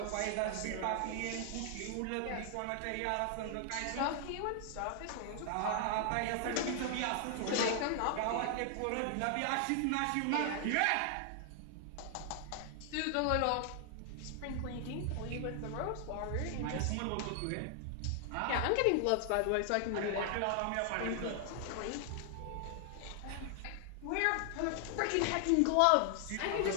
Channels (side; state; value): both; different; correlation 0.00